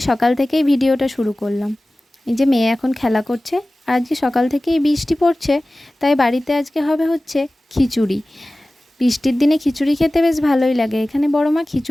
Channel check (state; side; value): normal; both; correlation 0.97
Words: সকাল থেকেই ভিডিওটা শুরু করলাম। এই যে মেয়ে এখন খেলা করছে, আর আজকে সকাল থেকেই বৃষ্টি পড়ছে, তাই বাড়িতে আজকে হবে হচ্ছে খিচুড়ি। বৃষ্টির দিনে খিচুড়ি খেতে বেশ ভালোই লাগে। এখানে বড় মা